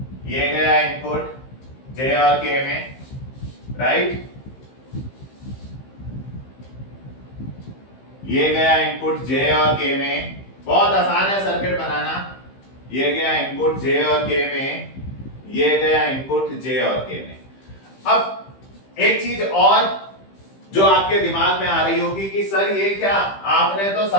ये गया इनपुट J और K में, राइट। ये गया इनपुट J और K में। बहुत आसान है सर्किट बनाना। ये गया इनपुट J और K में, ये गया इनपुट J और K में। अब एक चीज और जो आपके दिमाग में आ रही होगी कि सर ये क्या, आपने तो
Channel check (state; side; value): late; right; 15 ms